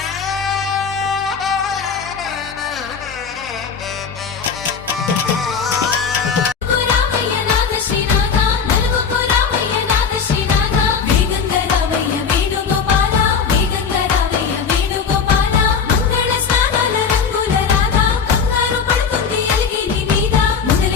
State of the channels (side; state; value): right; quieter; 6.2 dB